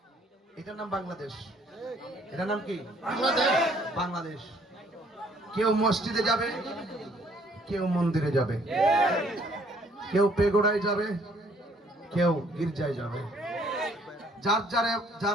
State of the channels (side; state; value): both; normal; correlation 0.63